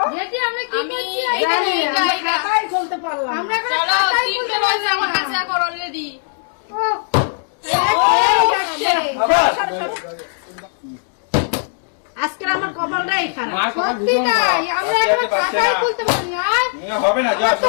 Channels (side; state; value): right; silent; digital silence